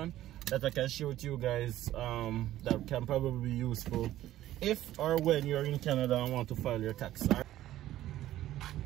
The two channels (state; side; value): quieter; left; 13.9 dB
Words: that I can share with you guys. That can probably be useful if or when you're in Canada and want to file your tax.